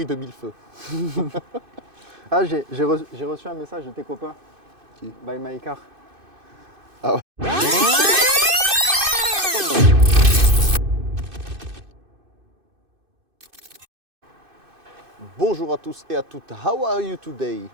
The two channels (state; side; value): late; left; 2.6 ms